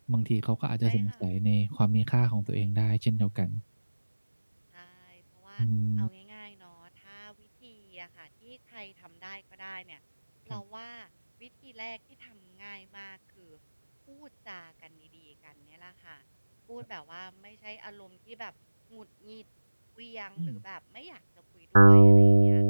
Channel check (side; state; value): both; inverted; correlation -1.00